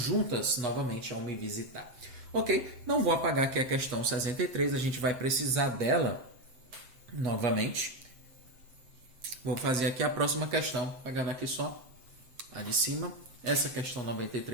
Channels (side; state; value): left; late; 7.8 ms